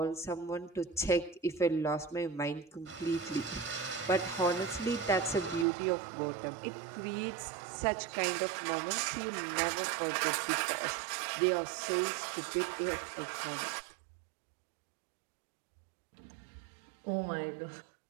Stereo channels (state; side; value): drops out; left; at 5.7 s